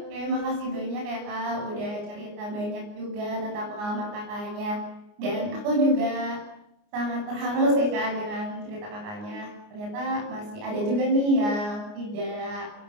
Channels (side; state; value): left; late; 29 ms